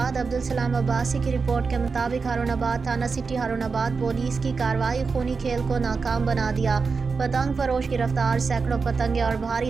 अब्दुल सलाम अब्बासी की रिपोर्ट के मुताबिक हारूनाबाद थाना सिटी हारूनाबाद पुलिस की कार्रवाई खूनी खेल को नाकाम बना दिया। पतंग फरोश गिरफ्तार, सैकड़ों पतंगे और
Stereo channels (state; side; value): quieter; left; 4.8 dB